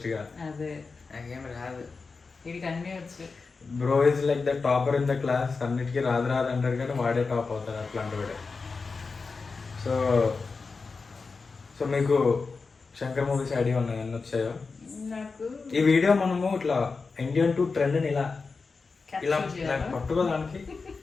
గా. అదే నాకేం రాదు. వీడికి అన్నీ వచ్చు. Bro is like the topper in the class. అన్నిటికీ రాదు అంటారు కానీ వాడే టాప్ అవుతాడు అట్లాంటి వాడే. సో సో మీకు శంకర్ మూవీస్ ఐడియా ఉన్నాయి ఎన్ని వచ్చాయో? నాకు ఈ వీడియో మనము ఇట్లా ఇండియన్ టు ట్రెండ్ ని ఇలా ఇలా capture చేయాలా? పట్టుకోవడానికి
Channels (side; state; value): right; quieter; 4.5 dB